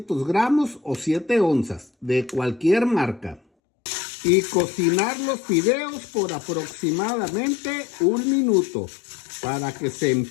gramos o 7 onzas de cualquier marca. Y cocinar los fideos por aproximadamente 1 minuto para que se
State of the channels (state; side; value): drops out; right; at 3.4 s